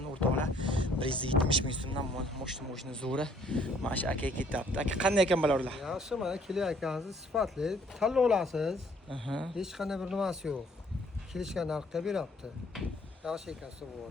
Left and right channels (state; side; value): normal; both; correlation 0.62